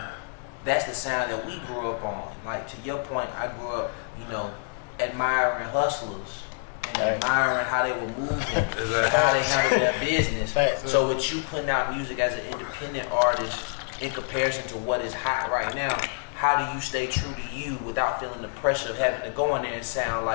that's the sound that we grew up on. Like to your point, I grew up, you know, admiring hustlers and admiring how they were moving, how they handled their business. So with you putting out music as an independent artist in comparison to what is hot right now, how do you stay true to you without feeling the pressure of having to go in there and sound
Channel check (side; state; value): right; silent; 60 dB below the other